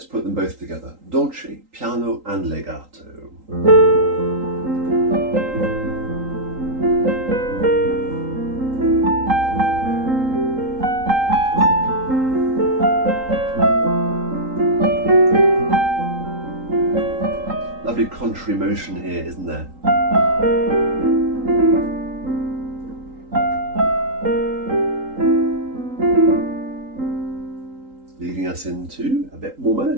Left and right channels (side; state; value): left; late; 3.8 ms